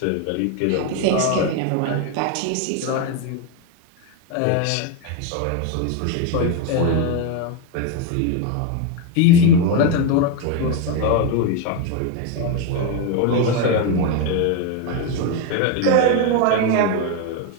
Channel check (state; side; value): different; both; correlation 0.02